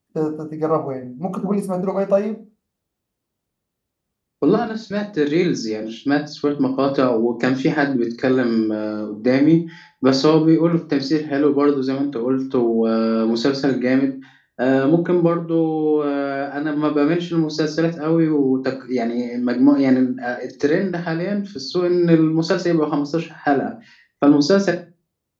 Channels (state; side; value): identical; both; correlation 1.00